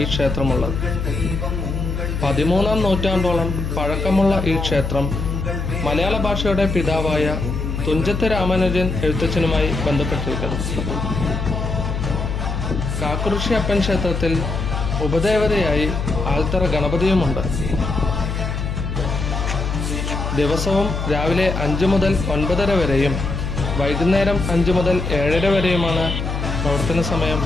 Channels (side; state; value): left; noise; hum, 3 dB below the sound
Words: ക്ഷേത്രമുള്ളത്. 13-ാം നൂറ്റാണ്ടോളം പഴക്കമുള്ള ഈ ക്ഷേത്രം മലയാള ഭാഷയുടെ പിതാവായ തുഞ്ചത്ത് രാമാനുജൻ എഴുത്തച്ഛനുമായി ബന്ധപ്പെട്ടിരിക്കുന്നു. കാക്കുറിശ്ശിയപ്പൻ ക്ഷേത്രത്തിൽ ഉപദേവതയായി ആൽത്തറ ഗണപതിയുമുണ്ട്. ദിവസവും രാവിലെ 5 മുതൽ 9:30 വരെയും വൈകുന്നേരം 5 മുതൽ 7:30 വരെയുമാണ് പ്രവർത്തന സമയം.